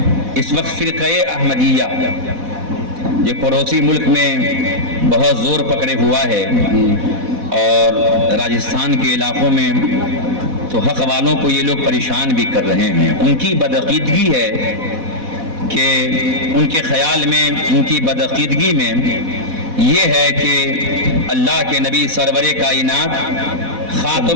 اس وقت فرقہ احمدیہ جو پڑوسی ملک میں بہت زور پکڑے ہوا ہے، اور راجستھان کے علاقوں میں تو حق والوں کو یہ لوگ پریشان بھی کر رہے ہیں. ان کی بدعقیدگی ہے کہ ان کے خیال میں، ان کی بدعقیدگی میں یہ ہے کہ اللہ کے نبی سرور کائنات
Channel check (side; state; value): left; late; 4.1 ms